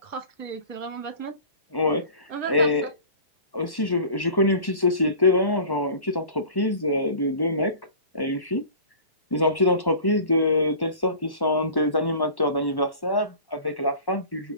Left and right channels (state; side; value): late; right; 1.1 ms